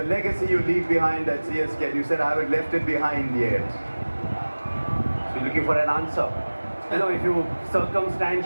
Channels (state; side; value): inverted; both; correlation -1.00